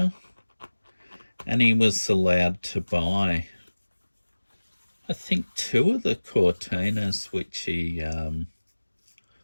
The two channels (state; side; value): inverted; both; correlation -1.00